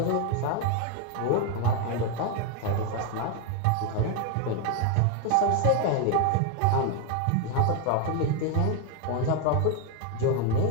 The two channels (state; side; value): different; both; correlation 0.01